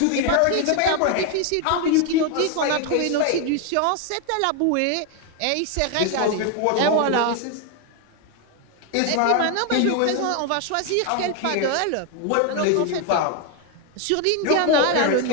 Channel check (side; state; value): both; different; correlation 0.01